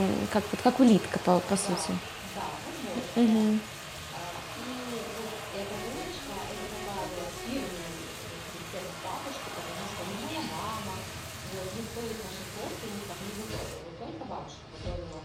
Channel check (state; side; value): identical; both; correlation 1.00